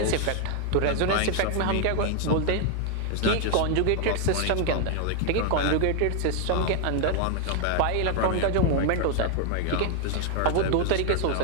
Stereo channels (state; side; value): different; both; correlation 0.00